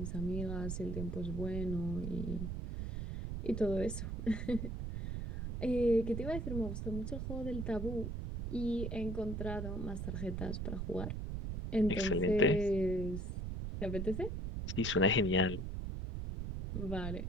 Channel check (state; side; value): noise; right; rumble, 4 dB below the sound